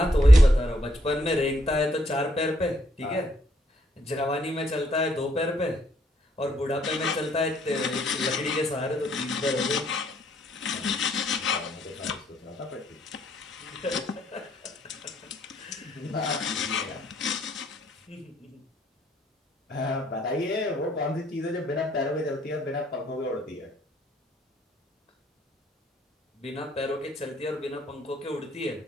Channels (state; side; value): normal; both; correlation 0.70